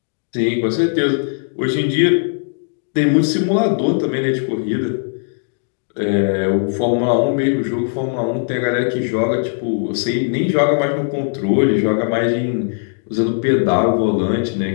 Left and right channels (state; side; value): silent; right; digital silence